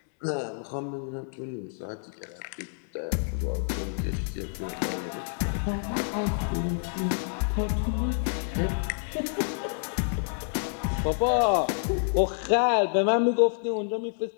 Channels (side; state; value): right; silent; digital silence